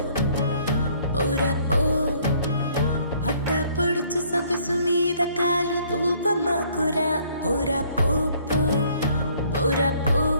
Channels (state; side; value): inverted; both; correlation -0.62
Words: పోరా పో అడ్డ పొడుచు సొగసు మీద కాలు దూపమాకురా పోరా పో పో పోరా పో